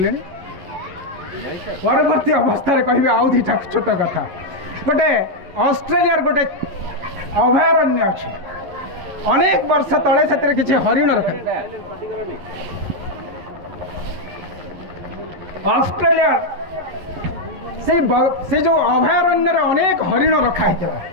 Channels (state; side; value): late; left; 11 ms